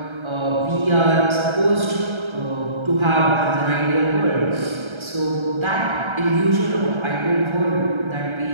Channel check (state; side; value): late; left; 1.3 ms